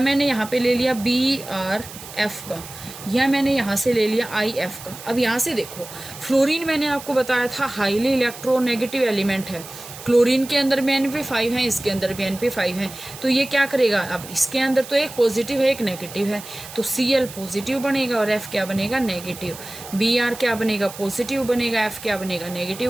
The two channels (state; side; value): noise; right; hiss, 14 dB below the sound